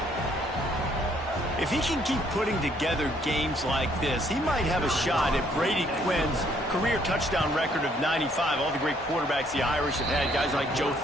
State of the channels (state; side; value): normal; both; correlation 0.66